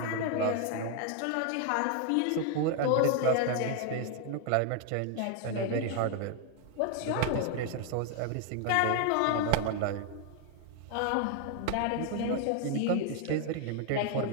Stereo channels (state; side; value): different; both; correlation 0.01